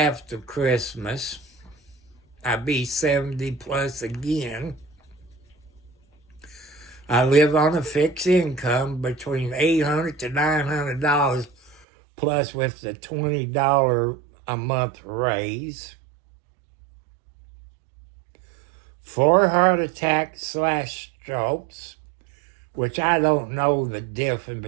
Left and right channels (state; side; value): drops out; left; at 11.8 s